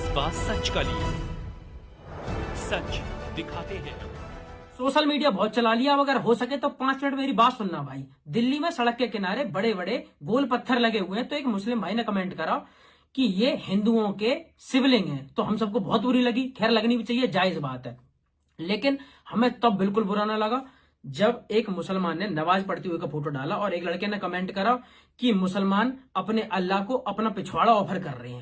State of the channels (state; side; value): identical; both; correlation 1.00